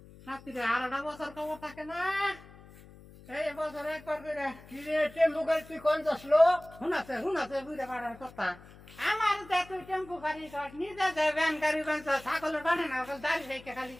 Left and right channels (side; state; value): left; noise; hum, 21 dB below the sound